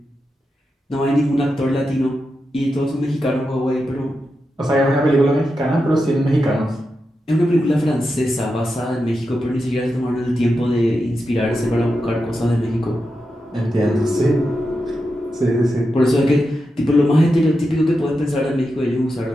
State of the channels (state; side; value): normal; both; correlation 0.89